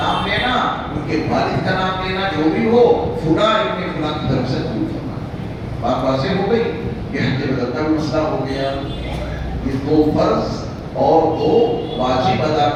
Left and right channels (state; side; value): identical; both; correlation 1.00